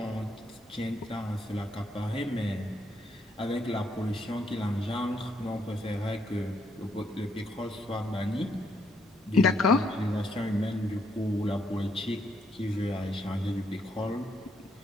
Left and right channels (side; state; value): both; normal; correlation 0.74